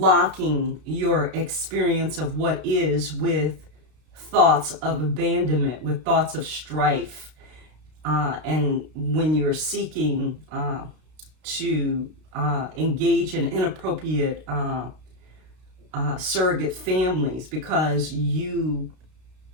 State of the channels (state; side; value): late; left; 32 ms